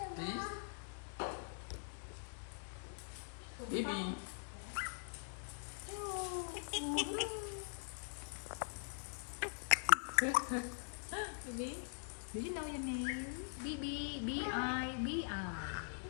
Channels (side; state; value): right; silent; digital silence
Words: Bibi. Bibi. Bibi. Do you know your name? Bibi. B-I. B-I.